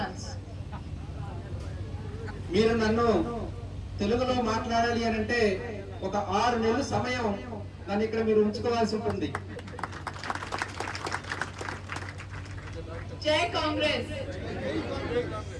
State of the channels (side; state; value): both; identical; correlation 1.00